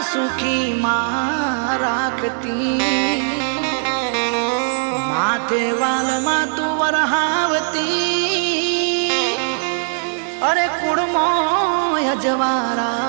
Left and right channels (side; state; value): left; silent; digital silence